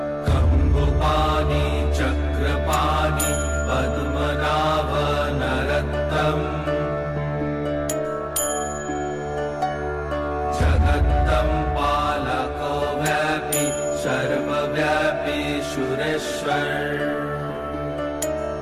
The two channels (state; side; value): identical; both; correlation 1.00